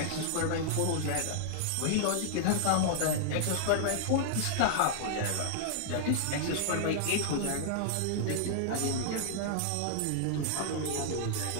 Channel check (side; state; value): both; different; correlation -0.01